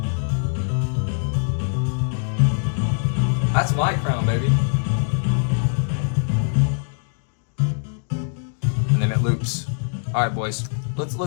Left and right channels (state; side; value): silent; right; digital silence